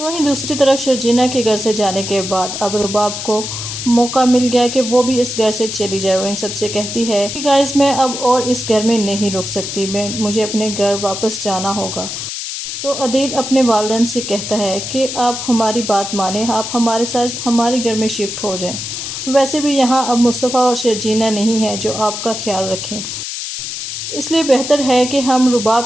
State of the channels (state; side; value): noise; left; hiss, 6 dB below the sound